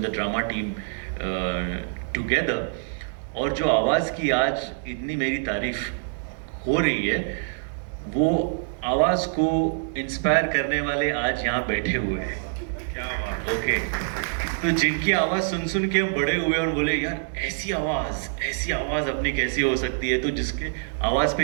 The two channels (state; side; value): silent; left; 61 dB below the other